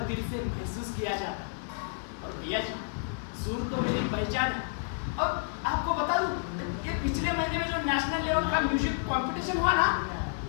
दिल से महसूस किया जाता है। और भैया जी, सुर तो मेरी पहचान है। और आपको बता दूं, ये पिछले महीने में जो नेशनल लेवल का म्यूजिक कंपटीशन हुआ ना,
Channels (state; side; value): silent; right; digital silence